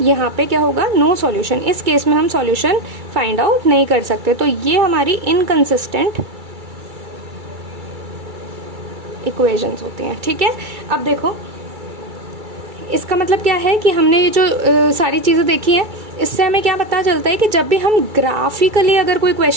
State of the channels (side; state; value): left; late; 2.3 ms